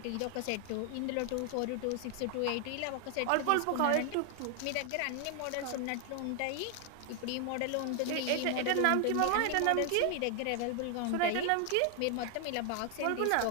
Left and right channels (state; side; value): different; both; correlation 0.00